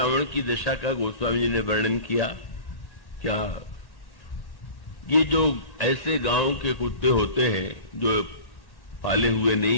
की दशा का गोस्वामी जी ने वर्णन किया। क्या ये जो ऐसे गांव के कुत्ते होते हैं जो पाले हुए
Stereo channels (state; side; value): late; right; 1.8 ms